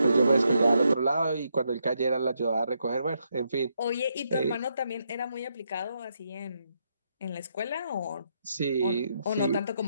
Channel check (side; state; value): both; inverted; correlation -0.79